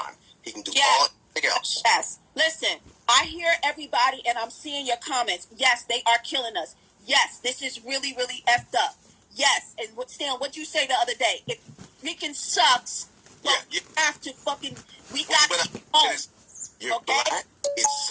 He can do all else. Yes. Listen, I hear everybody and I'm seeing your comments. Yes, they are killing us. Yes, this is really, really effed up. Yes. And Stan, what'd you say the other day? It freaking sucks. But we have to fucking, we got to keep home. You're black. It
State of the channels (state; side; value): identical; both; correlation 1.00